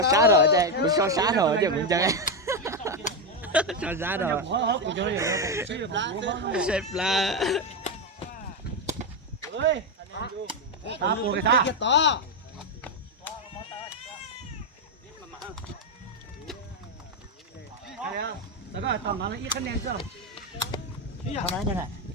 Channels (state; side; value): normal; both; correlation 0.07